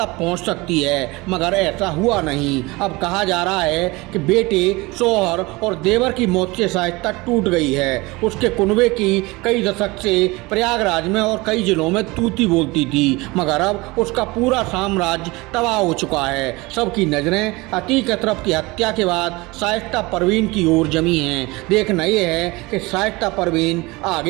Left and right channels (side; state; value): left; quieter; 23.0 dB